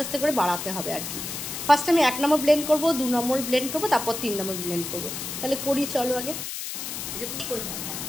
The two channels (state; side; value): noise; left; hiss, 6 dB below the sound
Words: আস্তে করে বাড়াতে হবে আর কি। ফার্স্ট আমি 1 নম্বর ব্লেন্ড করবো, 2 নম্বর ব্লেন্ড করবো, তারপর 3 নম্বর ব্লেন্ড করবো। তাহলে করি, চলো আগে।